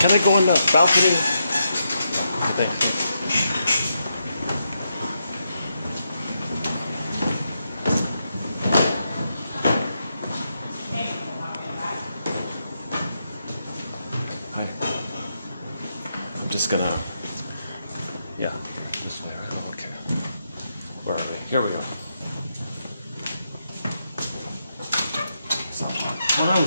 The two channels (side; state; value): both; inverted; correlation -0.83